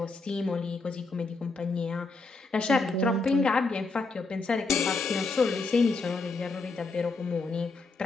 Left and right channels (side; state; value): right; quieter; 3.7 dB